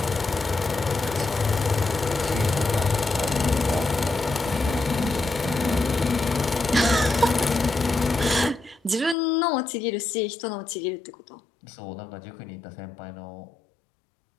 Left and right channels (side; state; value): right; drops out; at 9.2 s